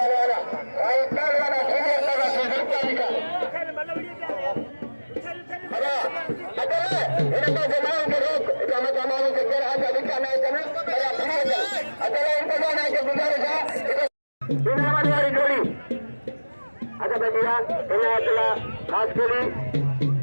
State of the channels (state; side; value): inverted; both; correlation -1.00